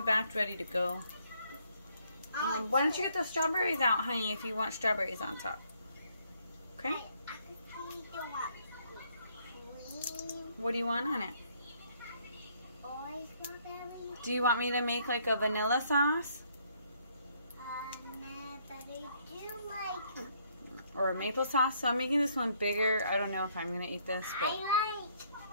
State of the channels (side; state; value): both; inverted; correlation -0.68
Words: batch ready to go. Why don't you get the strawberries out, honey, if you want strawberries on top? Okay? What do you want on it? Do you want me to make like a vanilla sauce? No, but I do like... Or a maple sauce? So I'm making this one bigger. I don't know if I'm going to eat this, but